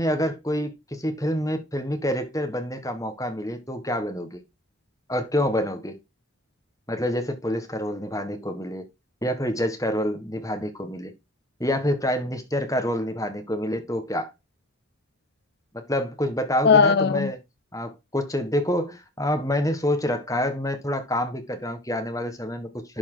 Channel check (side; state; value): both; normal; correlation 0.41